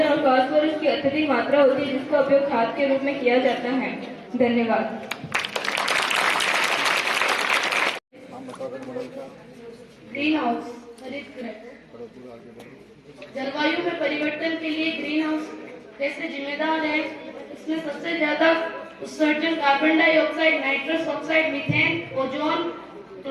और फास्फोरस की अत्यधिक मात्रा होती है, जिसका उपयोग खाद के रूप में किया जाता है। धन्यवाद। ग्रीन हाउस, हरित गृह। जलवायु में परिवर्तन के लिए ग्रीन हाउस कैसे जिम्मेदार है? इसमें सबसे ज्यादा उत्सर्जन carbon dioxide, nitrous oxide, methane, ozone,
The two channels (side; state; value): both; identical; correlation 1.00